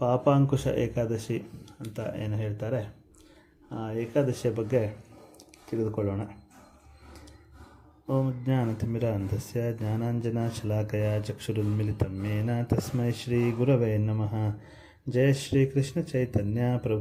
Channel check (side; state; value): both; identical; correlation 1.00